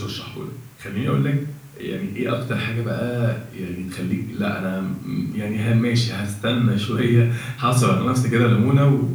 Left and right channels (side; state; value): both; identical; correlation 1.00